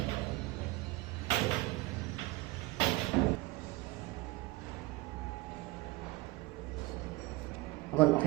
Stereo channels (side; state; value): left; quieter; 20.7 dB